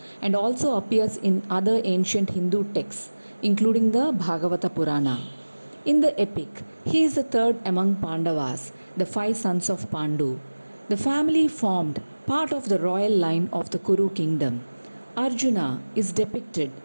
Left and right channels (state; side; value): inverted; both; correlation -1.00